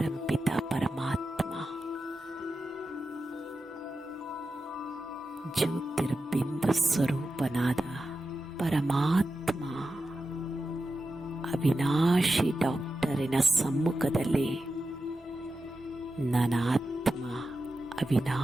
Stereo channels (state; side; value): normal; both; correlation 0.91